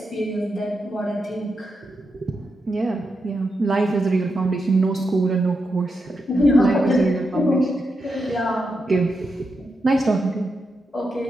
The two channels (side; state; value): both; normal; correlation 0.85